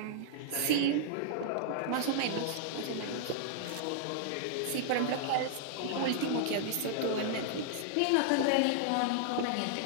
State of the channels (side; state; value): both; different; correlation -0.01